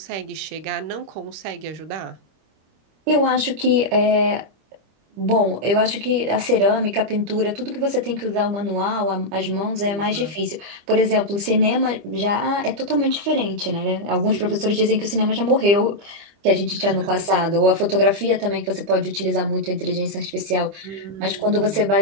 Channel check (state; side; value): late; left; 25 ms